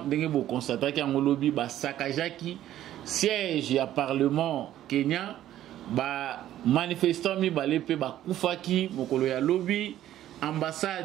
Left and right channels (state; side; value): quieter; left; 12.6 dB